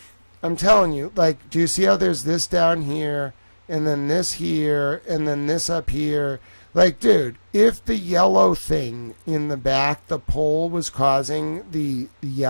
I'm telling you, like, do you see how there's this down here, and then this here, and then this up here? Like, dude, if the yellow thing in the back, the pole, was causing the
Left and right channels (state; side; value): inverted; both; correlation -1.00